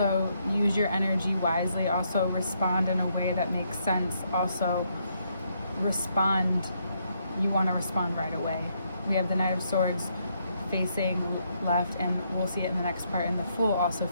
use your energy wisely. Also respond in a way that makes sense. Also respond, you want to respond right away. We have the Knight of Swords facing left, and we'll see it in the next part, and the Fool also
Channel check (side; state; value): both; inverted; correlation -0.75